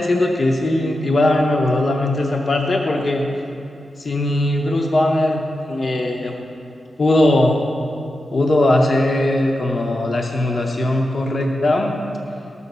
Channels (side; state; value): both; normal; correlation 0.89